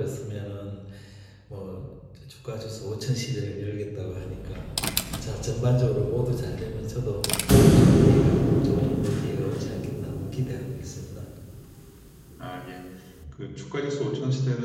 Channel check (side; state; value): both; identical; correlation 1.00